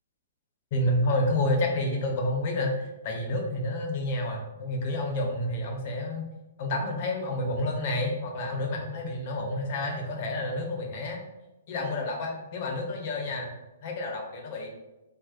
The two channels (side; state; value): both; inverted; correlation -0.32